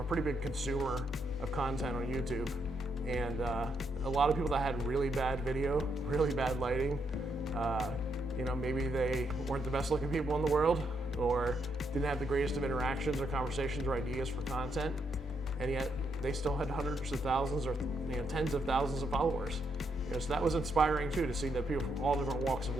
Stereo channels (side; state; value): both; normal; correlation 0.78